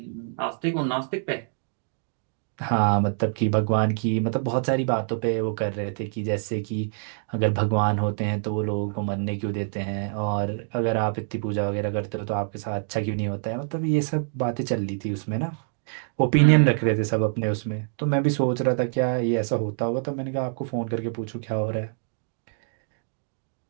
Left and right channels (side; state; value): left; silent; digital silence